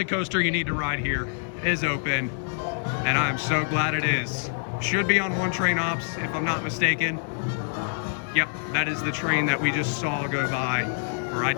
coaster you need to ride here is open, and I'm so glad it is. Should be on one train ops, if I'm not mistaken. Yep, that is the train that we just saw go by, or I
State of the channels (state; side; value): silent; right; 61 dB below the other